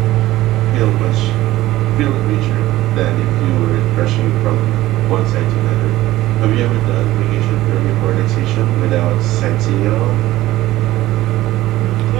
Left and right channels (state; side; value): quieter; left; 16.2 dB